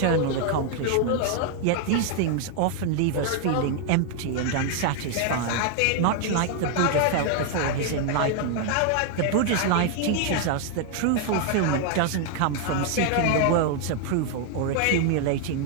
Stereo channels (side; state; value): both; different; correlation 0.00